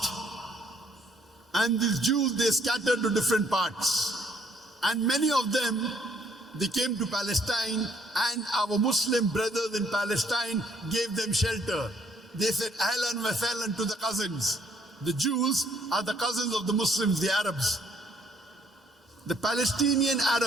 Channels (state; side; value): normal; both; correlation 0.66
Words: And these Jews, they scattered to different parts. And many of them, they came to Palestine, and our Muslim brothers in Palestine gave them shelter. They said, Ahlan wa sahlan to the cousins. The Jews are the cousins of the Muslims, the Arabs. The Palestinian